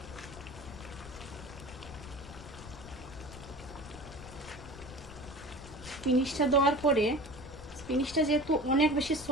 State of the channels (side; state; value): left; noise; rumble, 15 dB below the sound